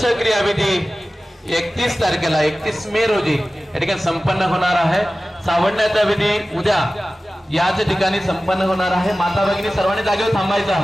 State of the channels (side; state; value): both; normal; correlation 0.96